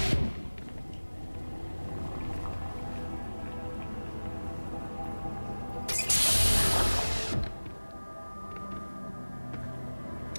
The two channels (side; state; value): both; inverted; correlation -1.00